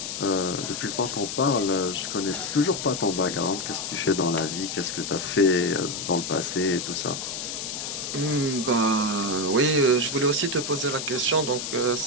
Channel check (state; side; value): noise; left; hiss, 5 dB below the sound